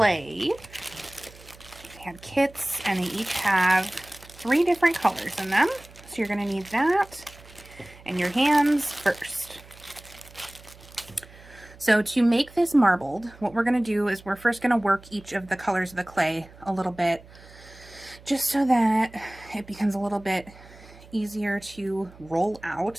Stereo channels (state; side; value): noise; right; hum, 22 dB below the sound